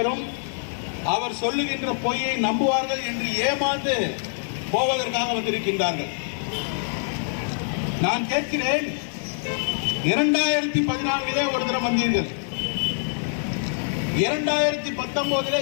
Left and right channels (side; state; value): right; silent; 62 dB below the other